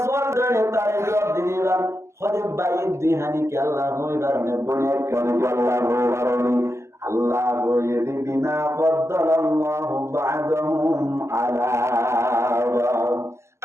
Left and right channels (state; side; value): late; left; 0.13 ms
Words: সোয়াল ধরে তারে জবাব দিবা হলে ভাই দুই হানি কে আল্লাহ হইবার নে বনে একখানি কে আল্লাহ হইবার আল্লাহ বলে বিমা ফাদ্দালাল্লাহু বা'দাহুম আলা বা'দ